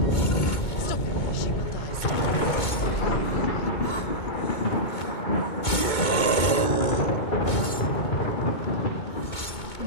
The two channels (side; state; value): right; late; 2.2 ms